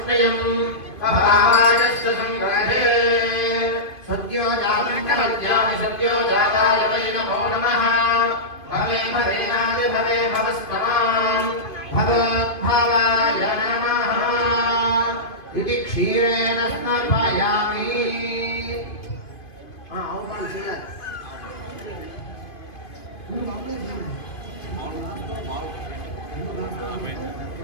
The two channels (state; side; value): late; right; 2.5 ms